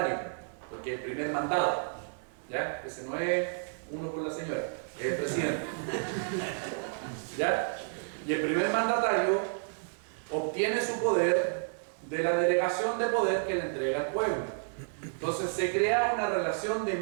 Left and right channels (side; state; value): left; silent; digital silence